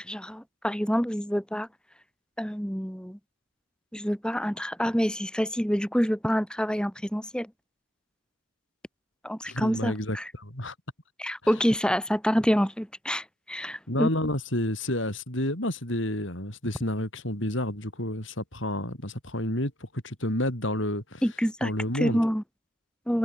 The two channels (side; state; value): both; normal; correlation 0.79